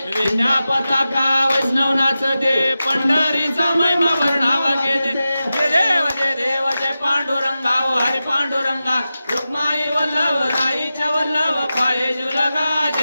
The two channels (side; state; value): both; inverted; correlation -0.93